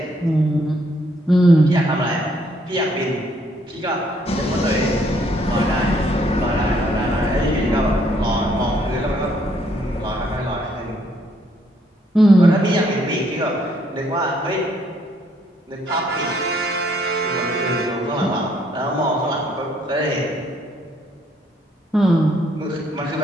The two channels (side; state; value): both; normal; correlation 0.68